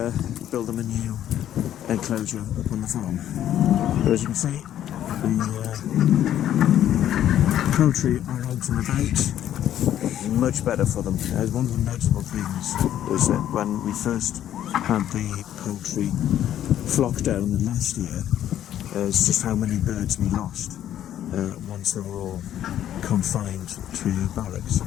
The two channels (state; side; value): quieter; right; 11.3 dB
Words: build them a new enclosure up on the farm. But as you can see, the poultry are out and about, much better for them. One of the notable things was that when we first had the poultry flockdown last year, it's just how many birds we lost once they were all confined to barracks.